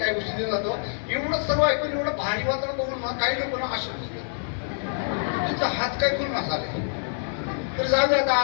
गोष्टी देत जातो. एवढं सर्व ऐकून एवढं भारी वातावरण बघून मग काही लोक ना असे तुमचा हात काय करून नसावे. तर जाऊ दे, आता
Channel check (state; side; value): silent; right; 61 dB below the other